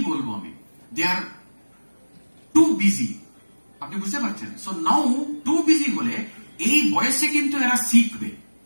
বলবো আমি, দে আর টু বিজি। আপনি বুঝতে পারছেন? সো নাও টু বিজি হলে এই বয়সে কিন্তু এরা শিখবে,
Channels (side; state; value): both; inverted; correlation -1.00